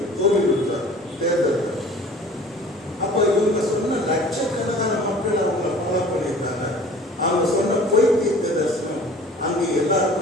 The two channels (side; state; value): both; normal; correlation 0.46